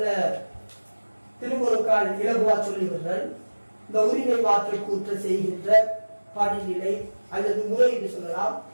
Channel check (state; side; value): inverted; both; correlation -1.00